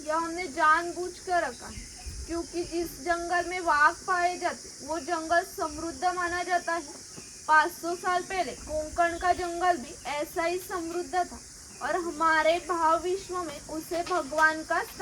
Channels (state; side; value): identical; both; correlation 1.00